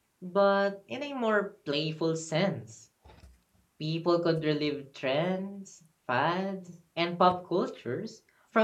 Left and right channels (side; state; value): both; identical; correlation 1.00